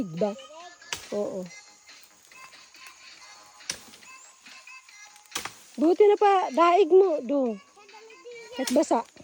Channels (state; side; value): identical; both; correlation 1.00